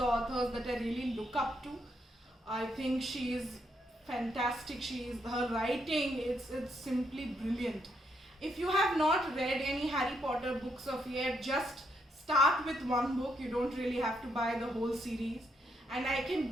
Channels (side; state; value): both; normal; correlation 0.76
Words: authors that I really look up to. I think she is fantastic. Her writing, it's simply brilliant. If you have not read any Harry Potter books of yet, just start with one book. You don't really have to buy the whole series, and I can